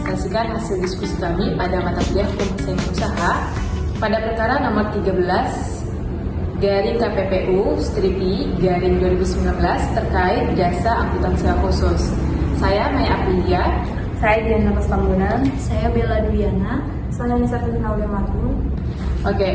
hasil diskusi kami pada mata kuliah Hukum Persaingan Usaha pada perkara nomor 13 garing KPPU strip I garing 2019 terkait jasa angkutan sewa khusus. Saya Maya Aprilia. Saya Diana Pastambunan. Saya Bella Duyana. Saya Nisa Firnaula Matung. Oke,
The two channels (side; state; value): both; identical; correlation 1.00